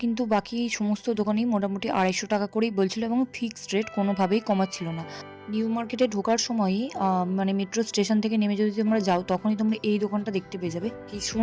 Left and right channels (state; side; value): identical; both; correlation 1.00